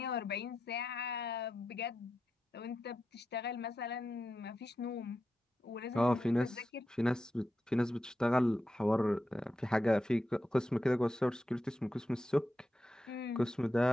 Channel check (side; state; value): both; normal; correlation 0.88